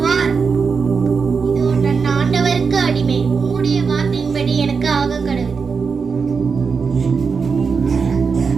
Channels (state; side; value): quieter; left; 5.4 dB